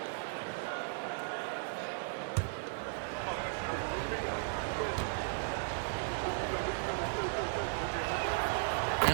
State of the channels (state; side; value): silent; left; digital silence